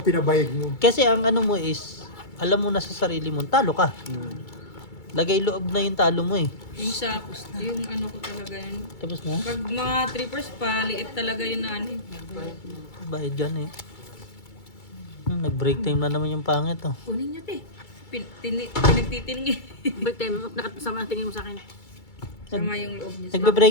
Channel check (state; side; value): late; right; 2.3 ms